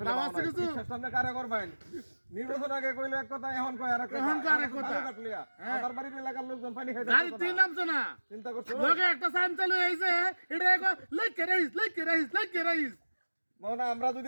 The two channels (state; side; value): inverted; both; correlation -1.00